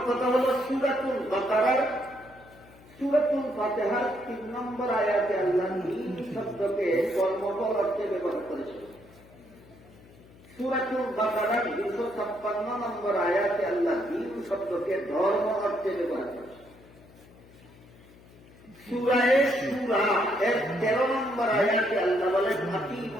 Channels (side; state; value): left; noise; hum, 24 dB below the sound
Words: কথা হল সূরাতুল বাকারার সূরাতুল ফাতিহার 3 নম্বর আয়াতে আল্লাহ দ্বীন শব্দকে কর্মফল অর্থে ব্যবহার করেছেন। সূরাতুল বাকারার 256 নম্বর আয়াতে আল্লাহ দ্বীন শব্দকে ধর্ম অর্থে ব্যবহার করেছেন। সূরা এর 13 নম্বর আয়াতে আল্লাহ বলেন